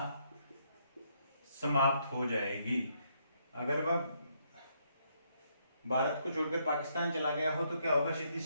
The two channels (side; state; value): both; inverted; correlation -0.74